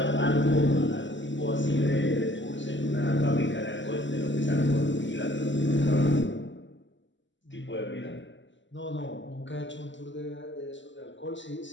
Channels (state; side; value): late; right; 0.54 ms